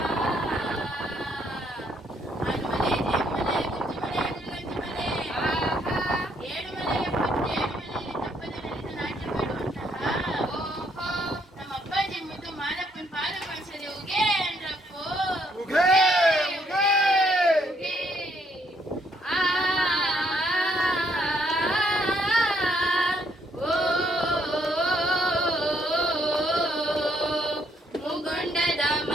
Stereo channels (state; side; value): normal; both; correlation 0.70